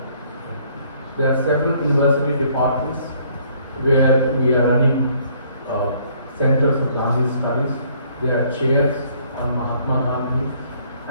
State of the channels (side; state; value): both; inverted; correlation -0.62